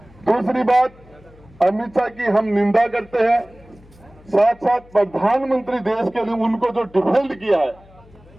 दूसरी बात, अमित शाह की हम निंदा करते हैं, साथ साथ प्रधानमंत्री देश के लिए उनको जो डिफेंड किया है,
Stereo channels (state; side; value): noise; left; hum, 25 dB below the sound